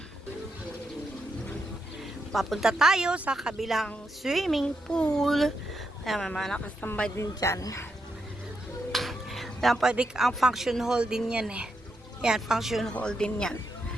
Papunta tayo sa kabilang swimming pool. Ayan, may mga nakastambay din dyan. Ayan, pwede ang function hall din yan eh. Ayan, function hall din yan.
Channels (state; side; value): normal; both; correlation 0.83